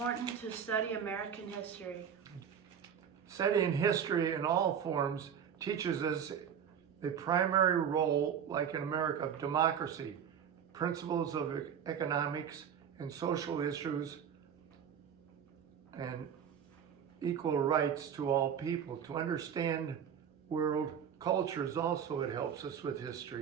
to study American history? Studying history in all forms teaches us the primary role, like in America, of democracy, principles of economics and social issues, and equal rights to all people. To understand world cultures also, it helps us with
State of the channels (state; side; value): quieter; left; 8.2 dB